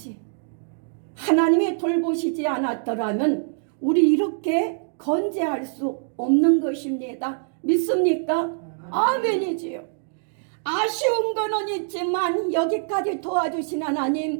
하나님이 돌보시지 않았더라면 우리 이렇게 건재할 수 없는 것입니다. 믿습니까? 아멘이지요. 아쉬운 거는 있지만 여기까지 도와주신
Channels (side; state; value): left; silent; digital silence